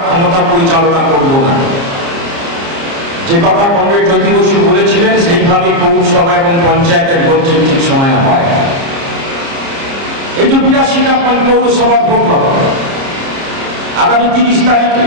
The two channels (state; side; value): late; left; 30 ms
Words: ক্ষমতা পরিচালনা করব না। যে কথা কমরেড জ্যোতি বসু বলেছিলেন সেইভাবে পৌরসভা এবং পঞ্চায়েতের ভোট ঠিক সময় হয়। এই যে 82টা পৌরসভার ভোট হবে আগামী 30 তারিখে,